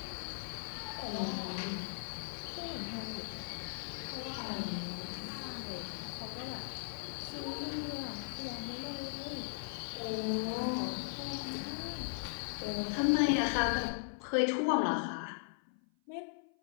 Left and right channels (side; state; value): right; silent; 52 dB below the other